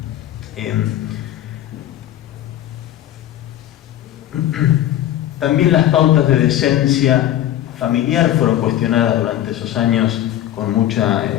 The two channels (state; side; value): quieter; right; 12.4 dB